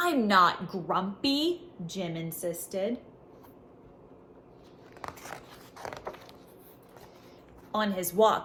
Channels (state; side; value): identical; both; correlation 1.00